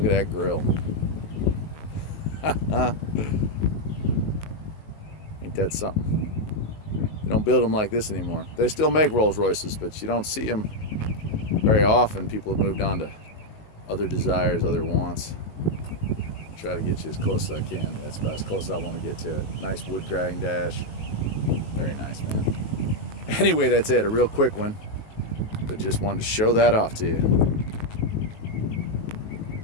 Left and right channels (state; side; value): late; right; 19 ms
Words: at that grill. Ain't that something? They don't build them like this anymore. They still make Rolls Royces, but you don't see them very often. People have moved on to other desires, other wants. Try to get you as close as I can. That's about as close as I want to get to it. Nice wood grating dash. Very nice, man. Anyway, that's it. A real quick one, but just wanted to show that off to you.